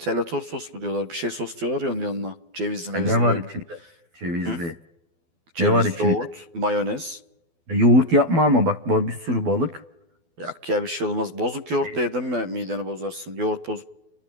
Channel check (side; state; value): left; late; 12 ms